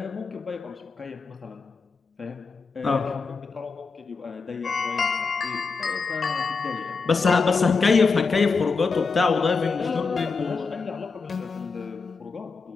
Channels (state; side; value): quieter; right; 4.6 dB